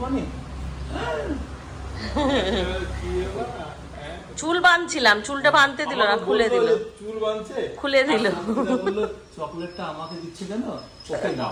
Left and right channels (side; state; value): both; identical; correlation 1.00